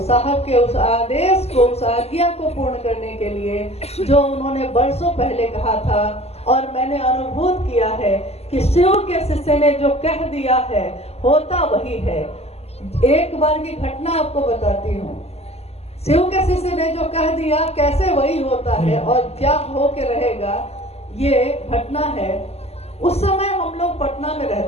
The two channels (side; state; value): right; late; 0.30 ms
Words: साहब के उस आदेश को, उस आज्ञा को पूर्ण करने के लिए जो उन्होंने बरसों पहले कहा था, और मैंने अनुभूत किया है कि शिव के शिष्य ने जो कह दिया है होता वही है। एक बार की घटना आपको बताती हूँ। शिव के शिष्य ने जो कह दिया कैसे वही होता है और क्या हो के रहेगा, ये घटना है। उस समय हम लोग पटना में